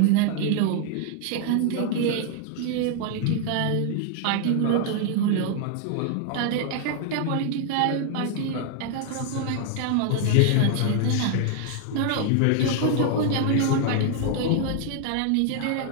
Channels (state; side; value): different; both; correlation 0.00